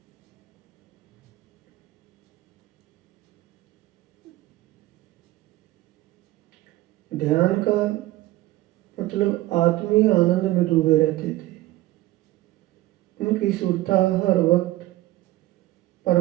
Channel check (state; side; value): quieter; left; 16.8 dB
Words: ध्यान का मतलब आत्मीय आनंद में डूबे रहते थे। उनकी सुरता हर वक्त